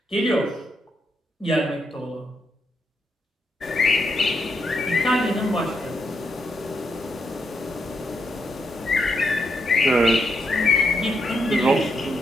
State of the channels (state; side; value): normal; both; correlation 0.80